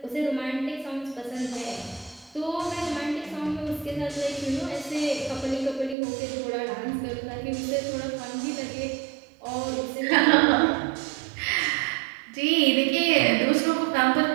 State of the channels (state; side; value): drops out; left; at 6.0 s